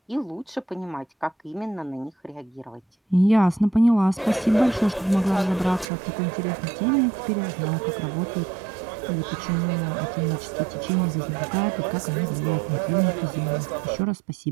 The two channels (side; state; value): left; drops out; at 5.9 s